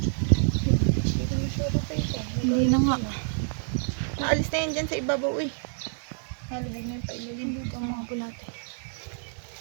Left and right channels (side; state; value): left; silent; digital silence